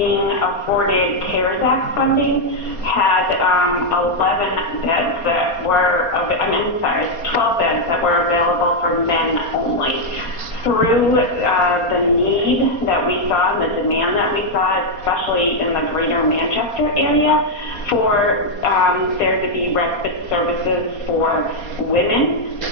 afforded CARES Act funding, had 11 beds that were, 12 beds that were available for men only. Through the need that we saw and the demand that we saw, especially in the greater Manchester area, for there to be respite services for women,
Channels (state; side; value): late; right; 4.2 ms